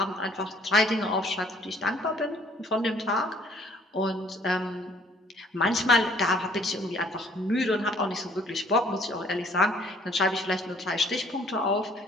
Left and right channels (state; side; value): normal; both; correlation 0.59